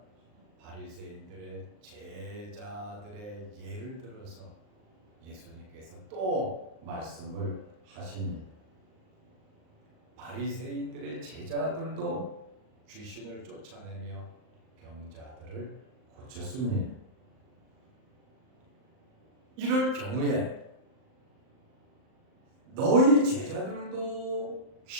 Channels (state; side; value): late; left; 38 ms